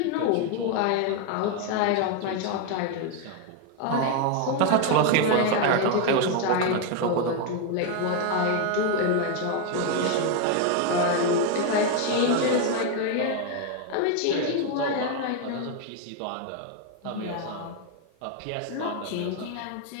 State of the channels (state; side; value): different; both; correlation 0.01